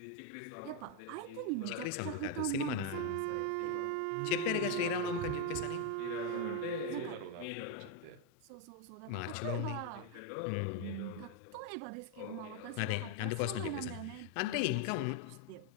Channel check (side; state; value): both; different; correlation 0.02